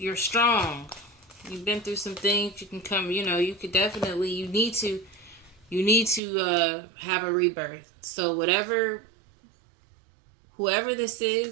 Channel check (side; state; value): left; drops out; at 6.2 s